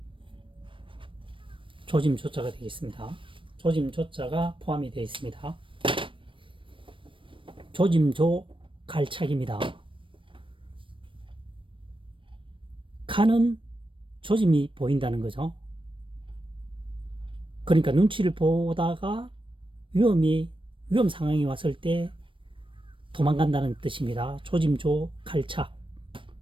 조짐 조자가 되겠습니다. 조짐 조자가 포함이 되어 있습니다. 조짐조 갈착입니다. 가는 조짐이 보인다는 거죠. 그러니까 눈치를 보다가 위험 상황이 왔을 때 도망간다는 뜻입니다. 조짐조 갈착.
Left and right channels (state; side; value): late; left; 0.25 ms